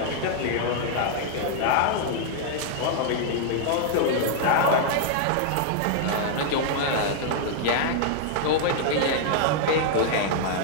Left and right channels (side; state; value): both; different; correlation -0.01